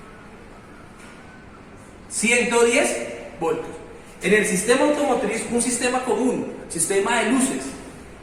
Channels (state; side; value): identical; both; correlation 1.00